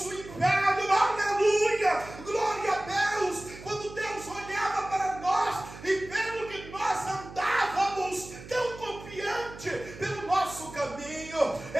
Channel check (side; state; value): right; noise; hum, 15 dB below the sound